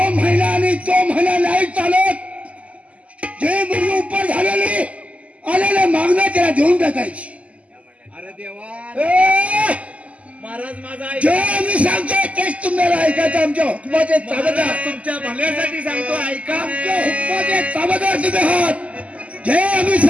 महिना आणि तो महिना नाही चालत जे मुलगी उपर झालेली आलेले मागणं त्याला देऊन टाकायची अरे देवा ए, महाराज माझा जे आम्ही सांगतोय तेच तुम्हाला ऐकायचं आमच्या हुकमाचे चाबदार तुमच्या भल्यासाठी सांगतो ऐका. आमच्या हुकमाचे चाबदार तुम्ही आहात जे आम्ही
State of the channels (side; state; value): left; late; 0.067 ms